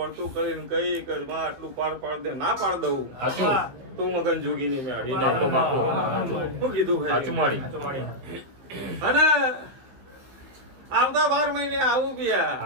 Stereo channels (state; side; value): late; left; 15 ms